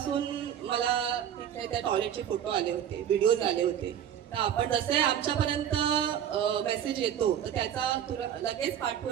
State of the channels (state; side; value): quieter; left; 9.7 dB